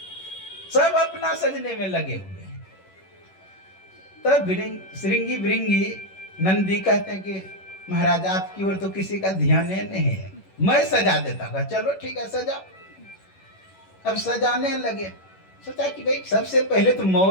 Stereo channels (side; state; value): right; late; 11 ms